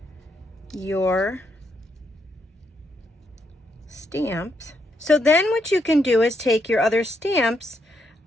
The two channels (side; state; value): both; normal; correlation 0.78